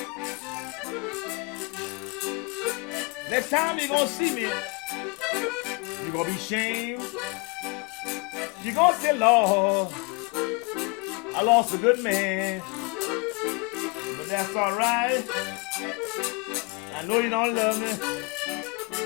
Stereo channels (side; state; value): right; quieter; 29.9 dB